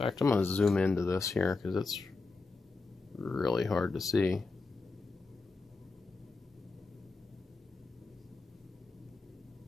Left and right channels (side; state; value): right; quieter; 3.8 dB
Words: fact, I'm going to zoom into this here because it's really hard to see.